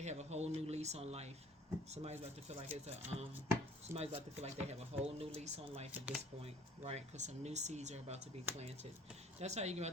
have a whole new lease on life. Somebody's about to feel like it's Somebody's about to feel like they have a whole new lease on life at this point, right? Because some new seeds are about to be planted. That's how you're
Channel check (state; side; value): normal; both; correlation 0.53